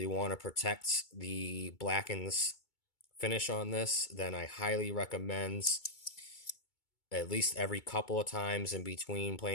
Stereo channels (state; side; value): late; right; 2.3 ms